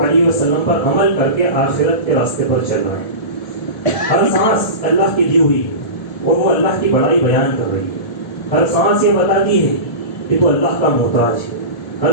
وسلم پر عمل کر کے آخرت کے راستے پر چل رہے ہیں۔ ہر سانس اللہ کی دی ہوئی ہے اور وہ اللہ کی بڑائی بیان کر رہی ہے۔ ہر سانس یہ بتاتی ہے کہ تو اللہ کا محتاج ہے،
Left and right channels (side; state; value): right; late; 1.7 ms